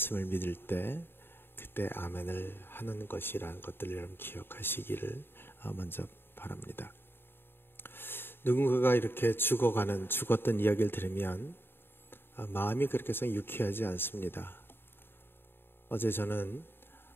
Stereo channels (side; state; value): right; late; 0.10 ms